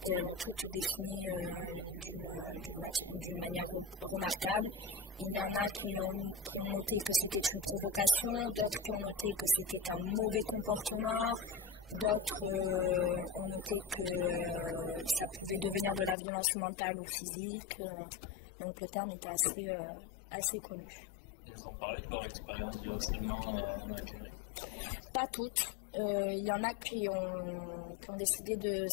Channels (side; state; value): right; drops out; at 16.2 s